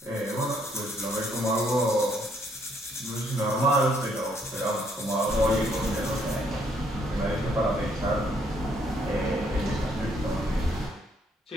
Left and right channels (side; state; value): both; normal; correlation 0.69